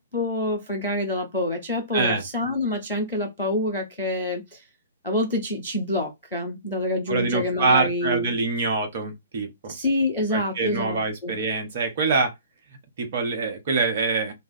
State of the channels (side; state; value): both; inverted; correlation -0.41